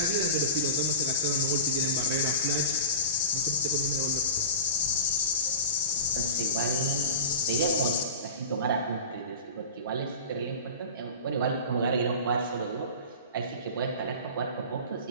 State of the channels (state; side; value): inverted; both; correlation -0.33